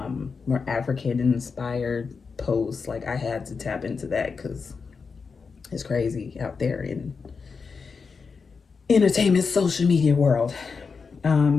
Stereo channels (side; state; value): right; quieter; 5.2 dB